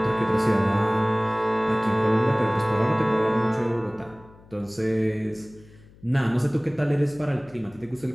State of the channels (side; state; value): left; noise; hum, 25 dB below the sound